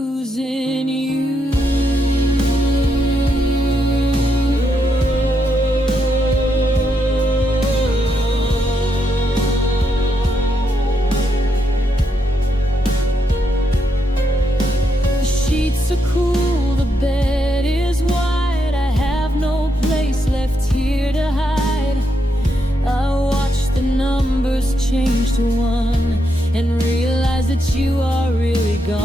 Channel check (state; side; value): normal; both; correlation 0.80